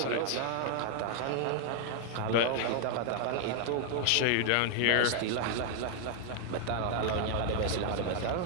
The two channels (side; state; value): both; different; correlation 0.00